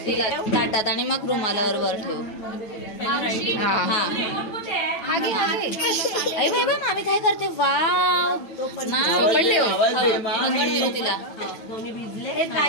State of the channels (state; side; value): late; right; 9.1 ms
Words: तिला ताटात आणि मग रुमालावर वर ठेव. मामी काय करते. वाव तिला दोन्ही